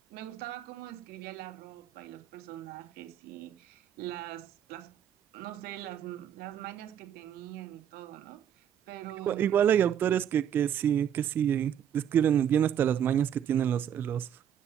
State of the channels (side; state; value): left; quieter; 9.5 dB